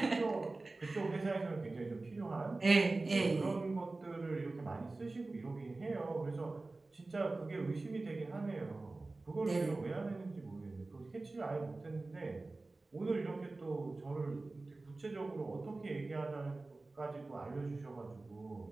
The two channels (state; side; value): quieter; left; 3.3 dB